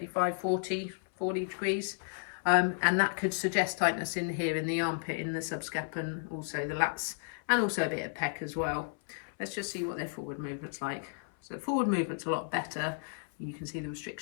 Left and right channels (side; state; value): right; silent; 56 dB below the other